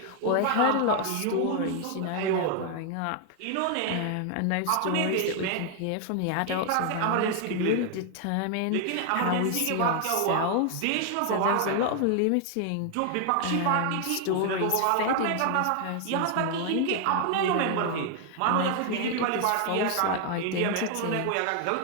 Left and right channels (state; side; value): different; both; correlation 0.00